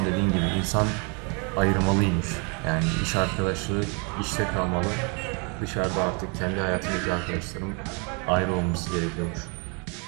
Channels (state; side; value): quieter; left; 33.6 dB